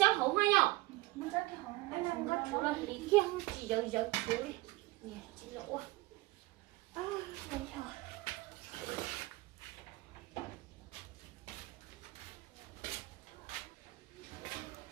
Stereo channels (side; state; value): left; quieter; 20.1 dB